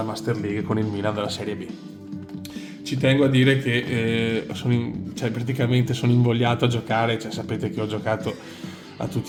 Master League con il Milan della Serie B. Ci tengo a dire che cioè, praticamente sono invogliato a giocare, cioè, sapete che ho giocato a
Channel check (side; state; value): both; identical; correlation 1.00